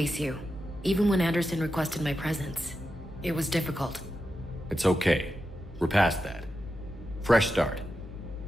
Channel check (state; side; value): normal; both; correlation 0.89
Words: you, even when Anderson requested my presence. It was difficult. It's okay. We're past that. Fresh start.